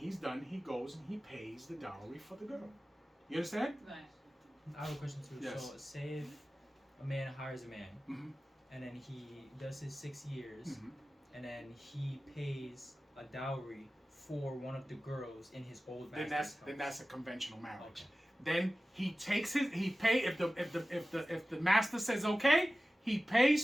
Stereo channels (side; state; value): both; normal; correlation 0.96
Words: done, he goes and he pays the dowry for the girl. You understand? Right. I have a question too. Yes. So say if a man hires a man, Mm-hmm. and then he does his 6 years, Mm-hmm. and then he pays a dowry for one of the girls in his old master's house. Then that's a conventional marriage. Okay. Then he takes if the master says okay, he